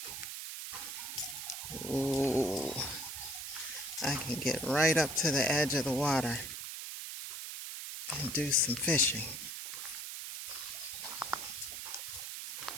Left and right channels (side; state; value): right; noise; hiss, 7 dB below the sound